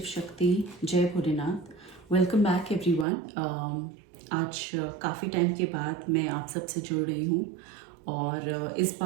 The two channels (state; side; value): drops out; left; at 3.1 s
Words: शक्ति, जय भोलेनाथ। Welcome back everyone. आज काफ़ी टाइम के बाद मैं आप सबसे जुड़ रही हूँ और इस